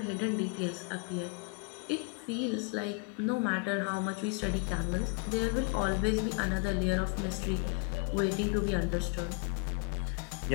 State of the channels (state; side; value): quieter; right; 33.6 dB